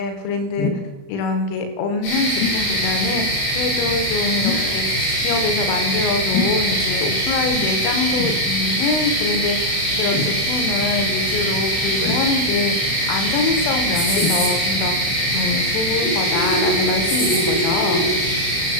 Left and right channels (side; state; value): right; late; 36 ms